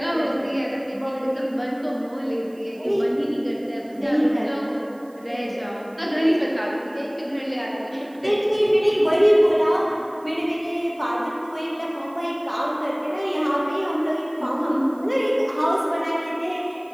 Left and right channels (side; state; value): right; noise; hiss, 30 dB below the sound